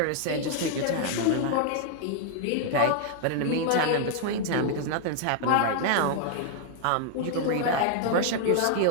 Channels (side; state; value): both; different; correlation -0.01